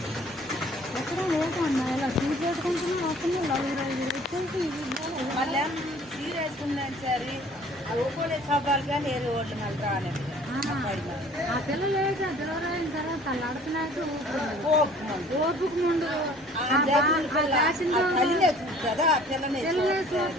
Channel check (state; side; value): normal; both; correlation 0.52